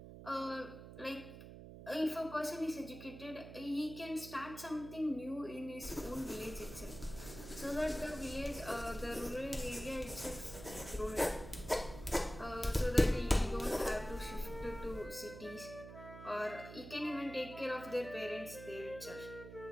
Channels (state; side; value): noise; right; hum, 13 dB below the sound